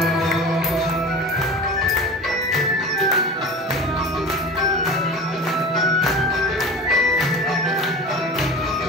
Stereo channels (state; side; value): normal; both; correlation 0.34